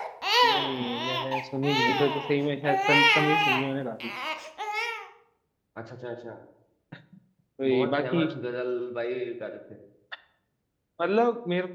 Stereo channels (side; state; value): both; identical; correlation 1.00